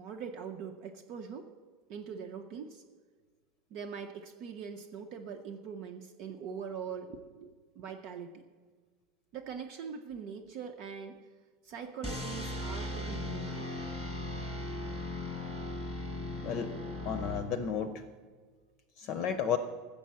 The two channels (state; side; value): normal; both; correlation 0.35